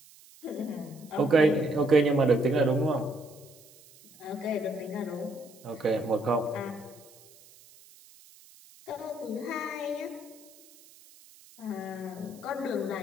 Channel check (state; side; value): noise; right; hiss, 24 dB below the sound